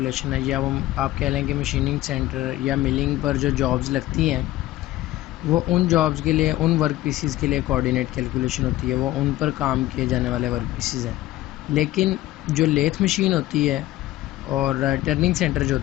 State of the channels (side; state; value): right; quieter; 15.7 dB